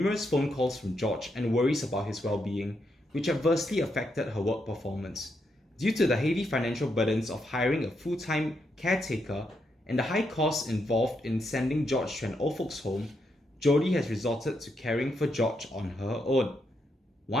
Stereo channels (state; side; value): normal; both; correlation 0.80